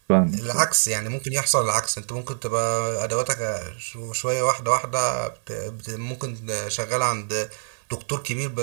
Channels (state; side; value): silent; left; digital silence